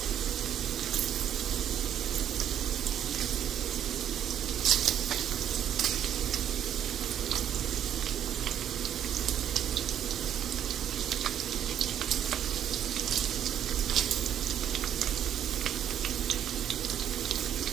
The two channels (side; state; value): left; quieter; 10.0 dB